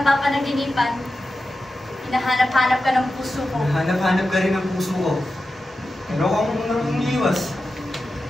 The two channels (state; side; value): normal; both; correlation 0.92